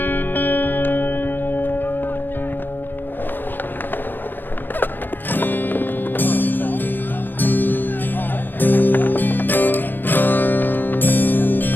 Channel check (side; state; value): right; late; 0.093 ms